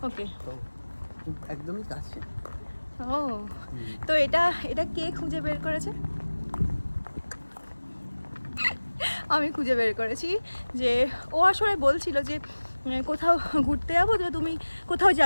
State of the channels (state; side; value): inverted; both; correlation -1.00